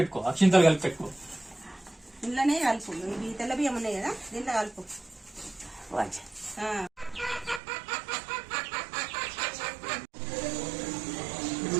అక్షింతలు కలిపి పెట్టుకో. ఇంట్లోనే కలుపు. ఇవి తెల్ల బియ్యం ఉన్నాయి కదా, దీంట్లో కలుపు.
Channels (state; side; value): drops out; left; at 7.6 s